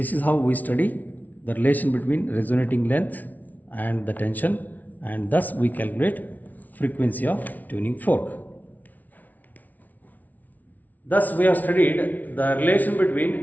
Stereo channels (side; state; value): right; late; 0.077 ms